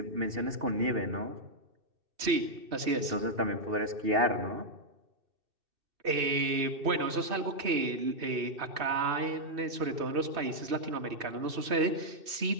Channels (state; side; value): late; left; 2.6 ms